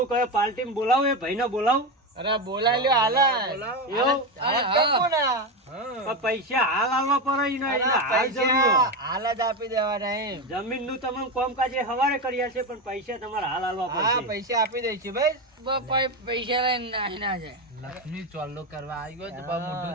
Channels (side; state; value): both; normal; correlation 0.14